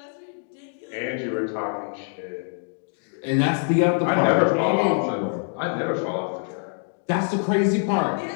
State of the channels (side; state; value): right; silent; 62 dB below the other